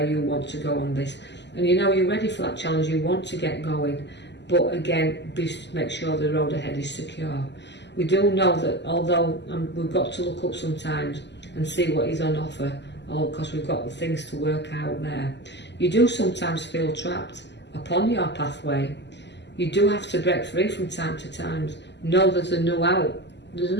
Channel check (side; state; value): right; late; 0.51 ms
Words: you want to go on this. And you know you're ready for that challenge, you want to get going, but again, make sure the road ahead is secure. We do know that although we've got to look up sometimes and see what is on offer, because we've got things to work out there, you do sometimes feel trapped upon your pathway. You do have to break free from time to time. Know there's a new out. There's